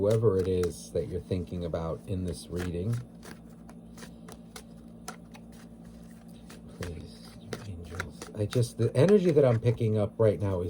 it is that you're thinking about in this reading. Please, angels. The energy that I'm picking up right now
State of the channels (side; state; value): both; identical; correlation 1.00